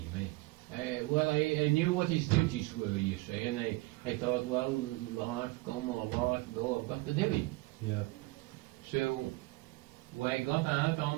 Well, I knew what his duties were, you see, and I thought, well, life come or life go, I've got to do it. Yeah. So, we got out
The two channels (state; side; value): quieter; left; 21.9 dB